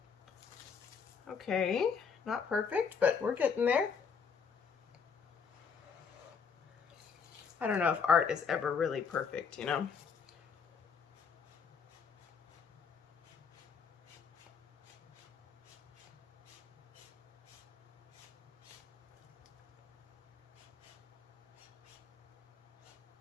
Okay, not perfect, but we're getting there. I don't know if art is ever really perfect, you know?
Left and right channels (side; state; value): right; quieter; 6.1 dB